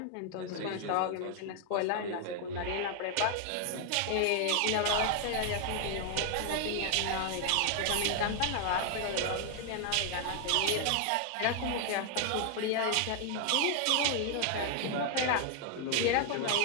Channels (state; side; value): different; both; correlation 0.00